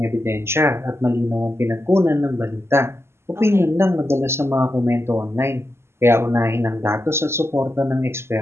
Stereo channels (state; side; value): late; left; 0.12 ms